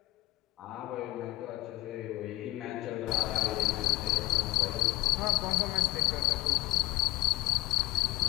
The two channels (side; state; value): right; quieter; 19.1 dB